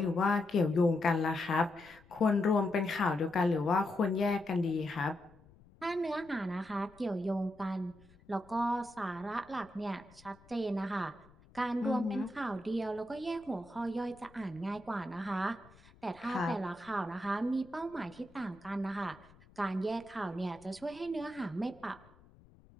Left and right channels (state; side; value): noise; left; rumble, 25 dB below the sound